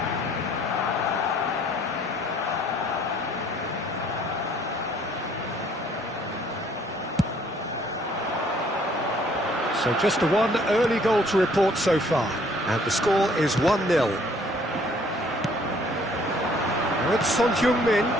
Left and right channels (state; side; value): normal; both; correlation 0.60